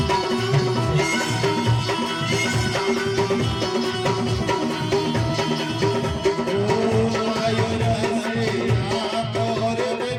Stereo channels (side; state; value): both; identical; correlation 1.00